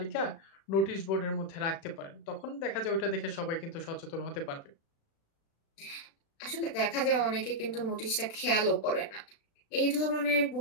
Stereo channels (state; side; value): late; right; 36 ms